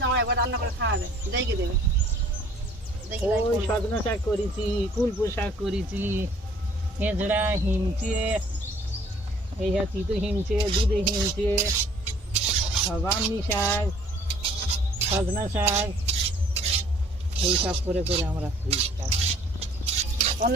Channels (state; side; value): normal; both; correlation 0.57